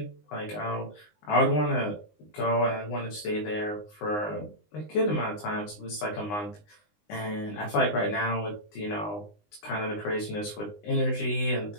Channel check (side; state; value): right; late; 19 ms